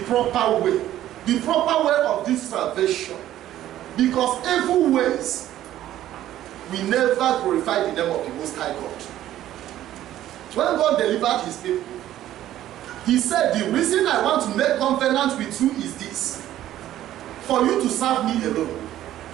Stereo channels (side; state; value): left; quieter; 13.0 dB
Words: proper way. The proper way of this salvation. Because evil ways will never glorify the name of the Most High God. When God delivered his people, he said, the reason I want to make covenant with you is this. For you to serve me alone.